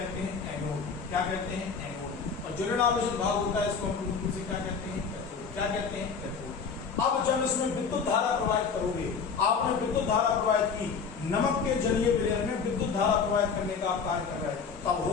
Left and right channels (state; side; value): quieter; right; 5.7 dB